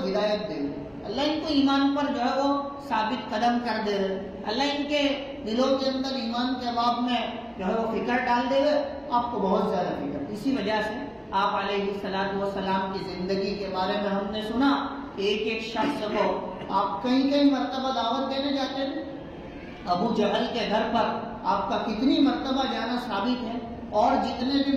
ہدایت دے، اللہ ان کو ایمان پر جو ہے وہ ثابت قدم کر دے، اللہ ان کے دلوں کے اندر ایمان کے باب میں جو ہے وہ فکر ڈال دے، آپ کو بہت زیادہ فکر۔ اسی وجہ سے آپ علیہ السلام کی زندگی کے بارے میں ہم نے سنا کہ ایک ایک شخص کو آپ کئی مرتبہ دعوت دینے جاتے تھے، ابو جہل کے گھر پر آپ کا کتنی مرتبہ جانا ثابت ہے، اور جتنے بھی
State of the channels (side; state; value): both; identical; correlation 1.00